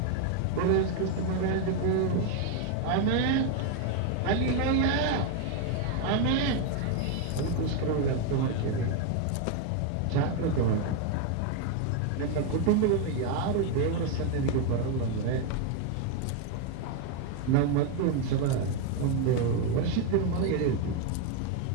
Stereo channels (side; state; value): both; different; correlation 0.01